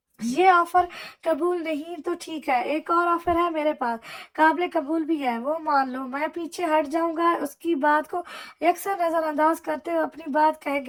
ये ऑफर कबूल नहीं तो ठीक है, एक और ऑफर है मेरे पास, काबिल कबूल भी है, वो मान लो। मैं पीछे हट जाऊंगा। उसकी बात को यकसर नजरअंदाज करते हुए अपनी बात कह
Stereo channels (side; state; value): both; identical; correlation 1.00